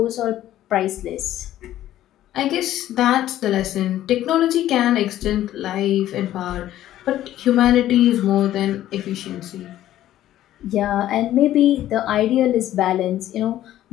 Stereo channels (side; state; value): right; quieter; 13.1 dB